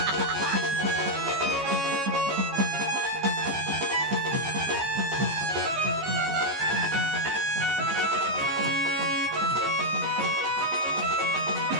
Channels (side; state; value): left; late; 14 ms